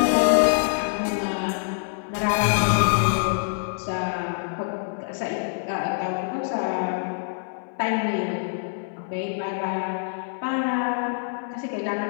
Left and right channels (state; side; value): silent; right; 62 dB below the other